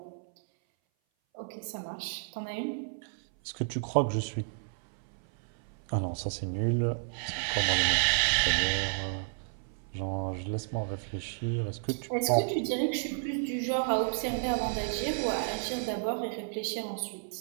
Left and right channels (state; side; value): silent; left; 57 dB below the other